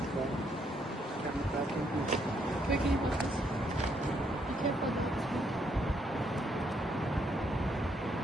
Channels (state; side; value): normal; both; correlation 0.73